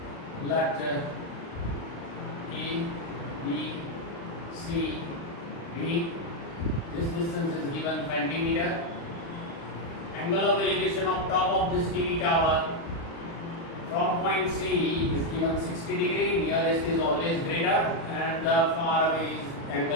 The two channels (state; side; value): late; right; 36 ms